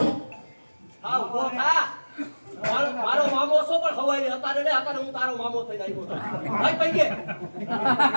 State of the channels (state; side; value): inverted; both; correlation -1.00